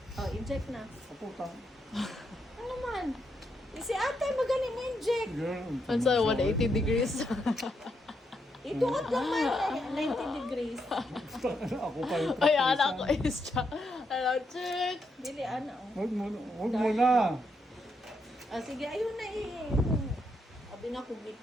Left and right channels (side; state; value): both; normal; correlation 0.80